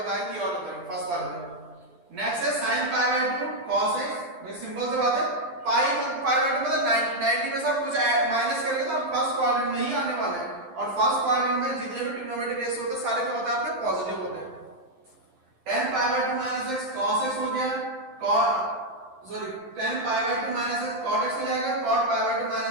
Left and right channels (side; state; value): left; late; 11 ms